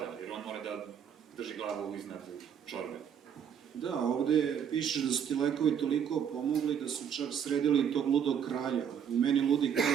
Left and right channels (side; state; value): left; quieter; 8.1 dB